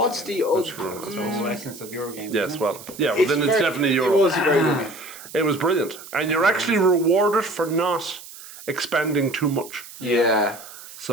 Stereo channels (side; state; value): right; noise; hiss, 16 dB below the sound